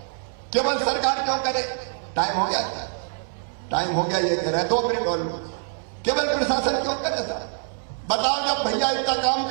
केवल सरकार क्यों करे? टाइम हो गया क्या? टाइम हो गया, ये करे 2 मिनट और। केवल प्रशासन क्यों करे सर? बताओ, जब भैया इतना काम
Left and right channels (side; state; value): left; silent; 62 dB below the other